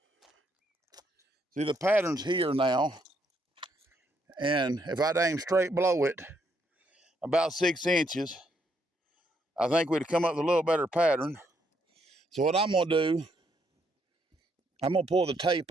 See, the pattern's here now, and if I'd aim straight below it, about 6 inches, I think we'd come up with a little better pattern. So what I'm gonna do, I'm gonna pull the tape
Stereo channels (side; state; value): both; normal; correlation 0.74